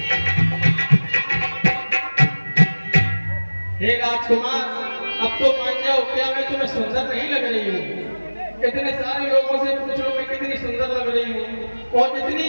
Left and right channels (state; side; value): inverted; both; correlation -1.00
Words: हे राजकुमार, अब तो मान जाओ, क्या मैं तुम्हें सुंदर नहीं लग रही हूँ? इतने सारे लोगों से पूछ लो मैं कितनी सुंदर लग रही हूँ, और इतनी